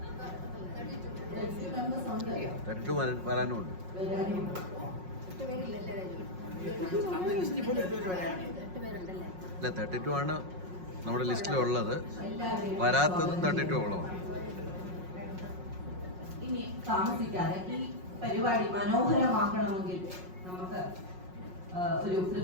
വരാനുമുണ്ട്. അല്ല, 32 ആണ് നമ്മുടെ ലിസ്റ്റിലുള്ളത്. വരാത്തതും 32 ഓളമാണ്. ഇനി താമസിക്കാതെ ഈ പരിപാടി മനോഹരമാക്കണമെങ്കിൽ നമുക്ക് ഒരു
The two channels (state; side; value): late; left; 5.5 ms